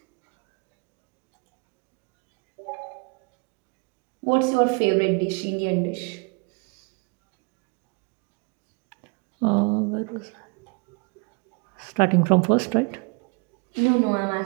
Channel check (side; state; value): left; quieter; 32.3 dB